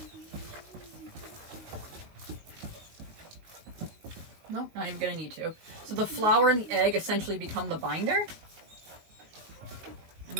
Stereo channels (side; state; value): left; late; 19 ms